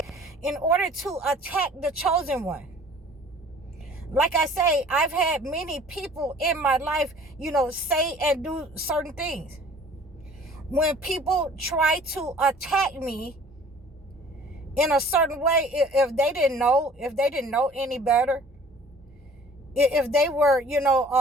in order to attack the chosen one. Like I say, I've had many people in my life, say and do certain things. When people try to attack me in a certain way, if they didn't know any better, if they were,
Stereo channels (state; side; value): normal; both; correlation 0.51